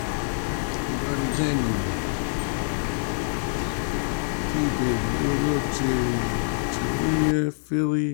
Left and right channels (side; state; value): right; silent; 61 dB below the other